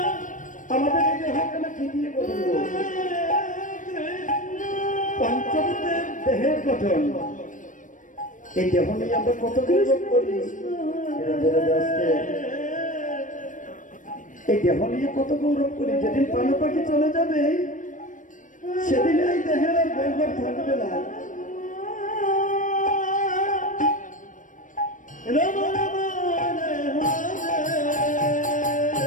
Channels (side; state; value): right; late; 0.37 ms